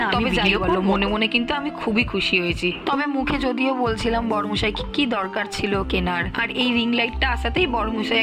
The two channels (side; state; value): both; identical; correlation 1.00